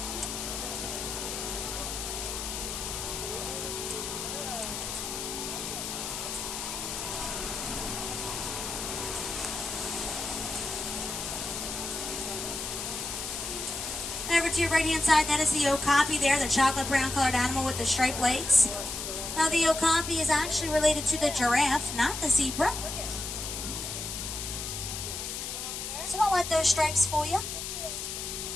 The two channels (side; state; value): left; noise; hiss, 5 dB below the sound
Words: Over to your right-hand side, that is the okapi there, the chocolate brown colored animal with the striped legs. Now the okapi is actually related to the giraffe, not the zebra. So don't let those stripes fool you.